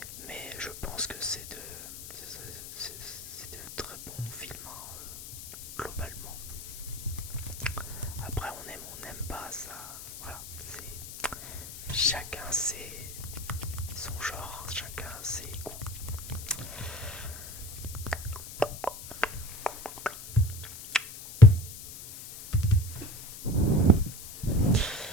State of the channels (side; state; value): left; noise; hiss, 12 dB below the sound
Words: chacun son genre, chacun ses goûts.